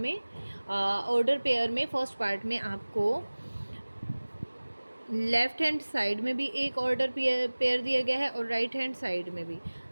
ऑर्डर पेयर में फर्स्ट पार्ट में आपको लेफ्ट हैंड साइड में भी एक ऑर्डर पेयर दिया गया है और राइट हैंड साइड में भी।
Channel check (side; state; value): both; inverted; correlation -1.00